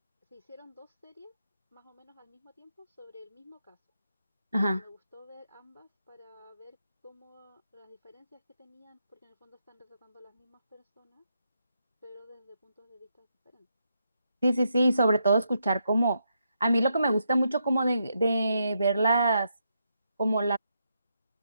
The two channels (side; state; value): both; inverted; correlation -0.81